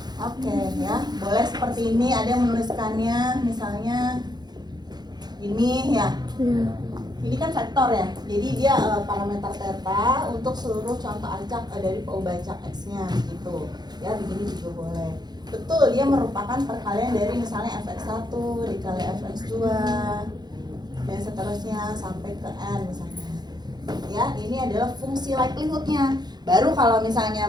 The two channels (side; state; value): left; late; 0.20 ms